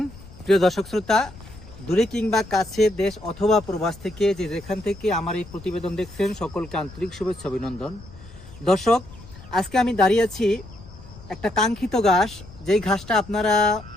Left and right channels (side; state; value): left; noise; rumble, 19 dB below the sound